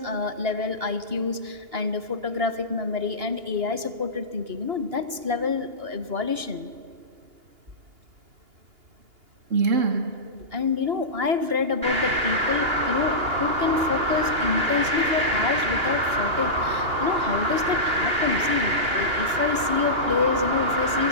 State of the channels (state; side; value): late; left; 2.8 ms